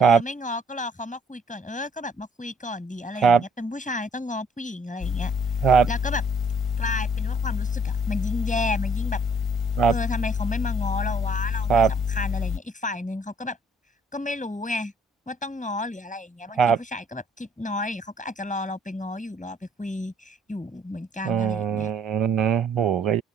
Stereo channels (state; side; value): normal; both; correlation 0.63